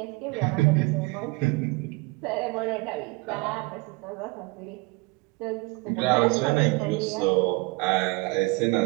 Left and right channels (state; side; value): quieter; left; 25.8 dB